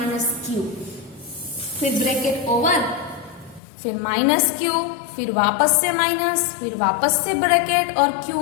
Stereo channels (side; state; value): right; drops out; at 3.6 s